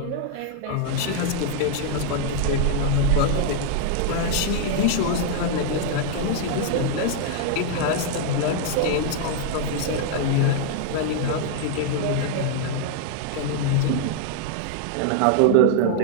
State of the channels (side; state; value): both; different; correlation 0.00